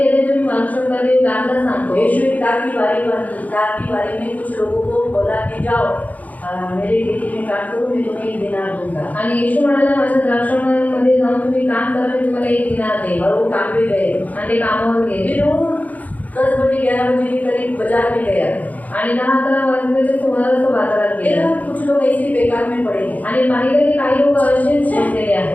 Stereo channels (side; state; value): right; late; 0.076 ms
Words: तुम्ही वाचू शकता. ते दाखला सांगतो. यीशु एक दाख की बारी में कुछ लोगों को बोला कि जाओ मेरे खेती में काम करो, मैं तुम्हें 1 दिनार दूंगा। आणि येशू म्हणाला माझ्या द्राक्षामध्ये जाऊन तुम्ही काम करा, मी तुम्हाला 1 दिनार देईन. और वो काम पे गए। आणि ते कामावर गेले. फिर वो 10 बजे 11 बजे के करीब बाजार में गया। आणि 10-11 वाजल्याच्या सुमारास तो बाजारात गेला. देखा कुछ लोग ऐसे ही बेकार में पड़े हैं। आणि पाहिलं की काही लोक असेच बसलेले